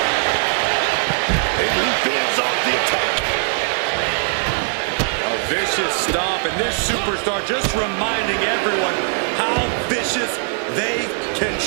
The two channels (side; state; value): left; silent; 59 dB below the other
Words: And he fends off the attack. A vicious stomp, and this superstar just reminding everyone how vicious they can